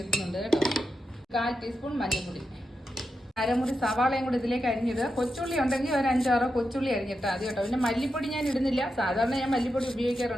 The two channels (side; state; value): both; normal; correlation 0.88